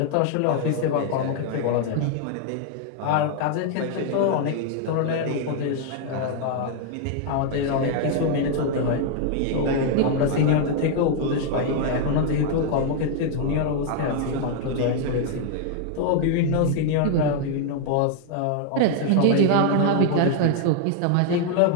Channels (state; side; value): different; both; correlation 0.00